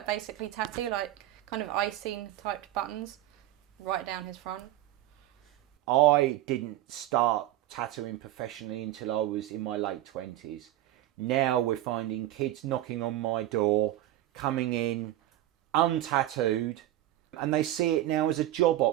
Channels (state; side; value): quieter; left; 14.2 dB